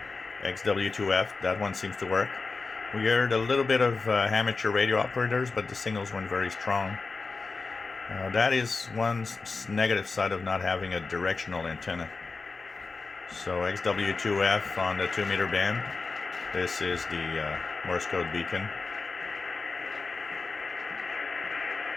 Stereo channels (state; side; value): quieter; right; 4.1 dB